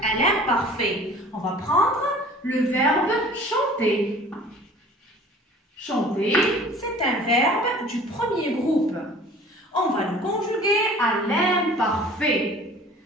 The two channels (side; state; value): both; normal; correlation 0.47